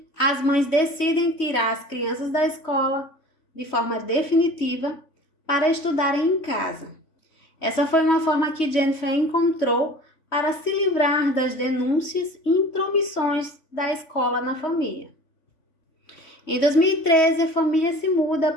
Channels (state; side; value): late; right; 3.1 ms